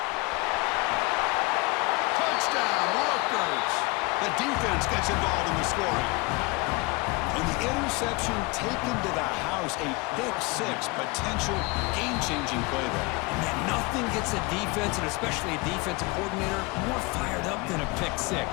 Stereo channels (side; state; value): right; quieter; 25.6 dB